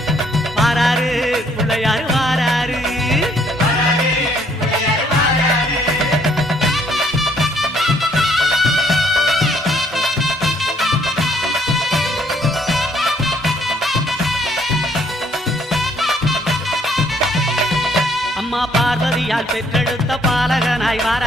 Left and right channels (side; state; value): both; normal; correlation 0.65